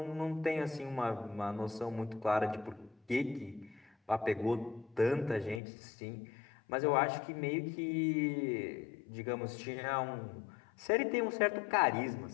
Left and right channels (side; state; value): right; drops out; at 5.6 s